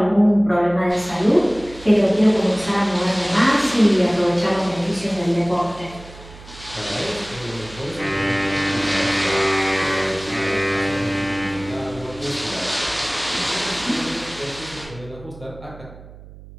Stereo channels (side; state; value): right; noise; hum, 18 dB below the sound